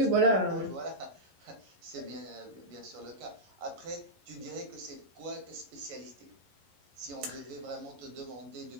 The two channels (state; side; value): late; left; 11 ms